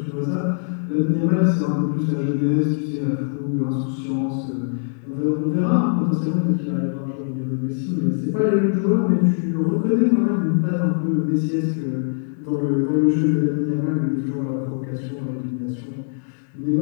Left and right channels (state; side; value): silent; right; digital silence